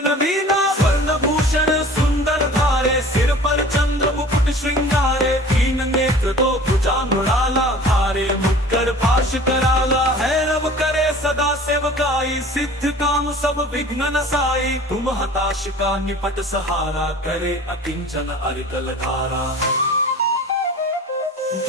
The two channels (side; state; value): both; normal; correlation 0.44